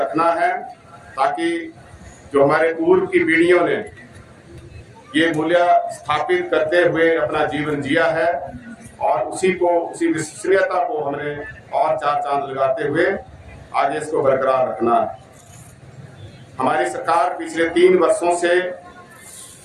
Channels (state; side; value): identical; both; correlation 1.00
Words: है ताकि जो हमारे पूर्व की पीढ़ियों ने ये मूल्य स्थापित करते हुए अपना जीवन जिया है और उसी विश्वसनीयता को हमने और 4 चांद लगाते हुए आगे इसको बरकरार रखना है। हमारी सरकार पिछले 3 वर्षों से